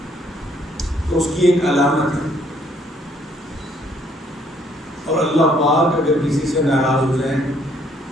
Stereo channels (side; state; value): both; normal; correlation 0.66